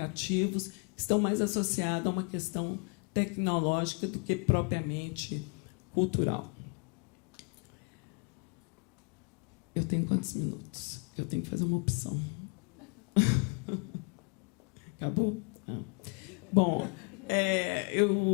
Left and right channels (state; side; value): quieter; right; 37.5 dB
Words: que estão mais associados a uma questão tecnológica do que propriamente cultural. Eu tenho quantos minutos? Eu tenho que fazer uma opção. Acabou? Não. Bom,